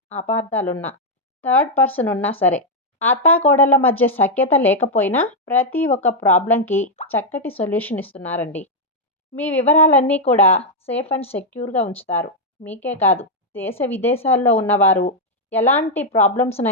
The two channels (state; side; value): normal; both; correlation -0.01